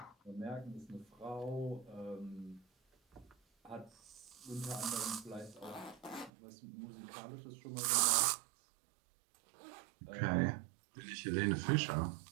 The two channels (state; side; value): drops out; left; at 6.3 s